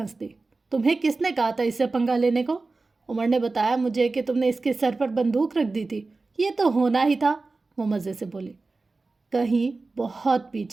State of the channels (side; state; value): left; quieter; 3.6 dB